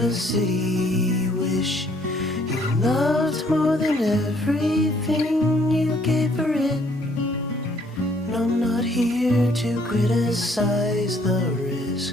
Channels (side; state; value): both; normal; correlation 0.64